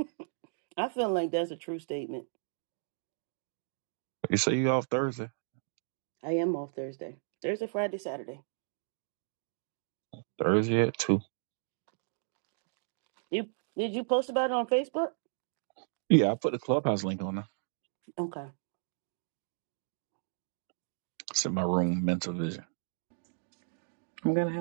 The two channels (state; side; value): silent; left; digital silence